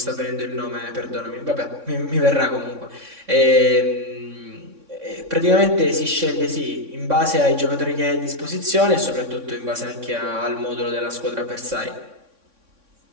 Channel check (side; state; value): left; late; 3.6 ms